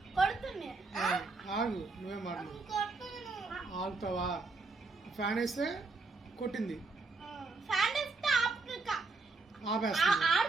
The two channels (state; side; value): quieter; left; 3.8 dB